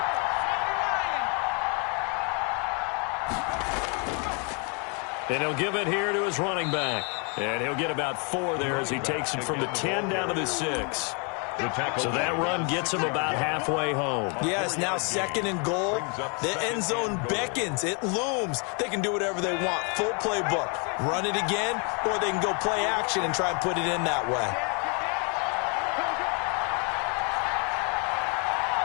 And he'll give it here to his running back. And he'll get about 4 there as he takes it from the 10 down to the 6. So that run gets him about halfway home. Yeah, it's now 2nd and goal. The end zone beckons. It looms. They can do whatever they want. Full playbook. Run it again, or they can go play action and try and put it in that way.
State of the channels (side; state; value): right; quieter; 35.8 dB